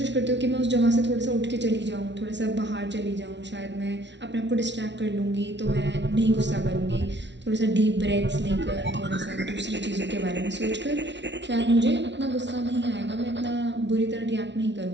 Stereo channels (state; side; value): late; left; 0.51 ms